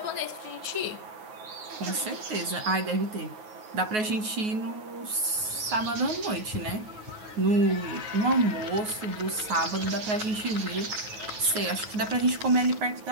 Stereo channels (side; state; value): left; late; 9.4 ms